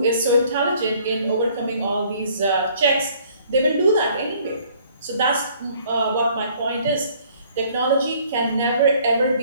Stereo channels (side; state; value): both; inverted; correlation -0.59